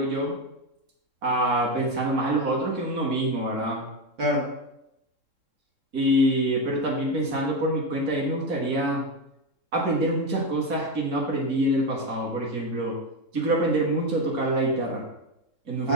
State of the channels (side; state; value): left; late; 3.7 ms